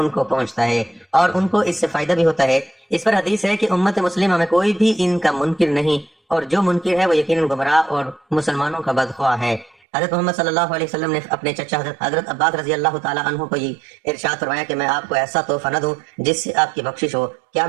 کو پہنچتا ہے اور ان کو اس سے فائدہ بھی ہوتا ہے. اس پر حدیث ہے کہ امت مسلمہ میں کوئی بھی ان کا منکر نہیں، اور جو منکر ہے وہ یقیناً گمراہ اور مسلمانوں کا بدخواہ ہے. حضرت محمد صلی اللہ علیہ وسلم نے اپنے چچا حضرت عباس رضی اللہ تعالیٰ عنہ کو یہ ارشاد فرمایا کہ میں آپ کو ایسا تحفہ نہ دوں جس سے آپ کی بخشش ہو، کیا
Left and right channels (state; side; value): drops out; left; at 9.8 s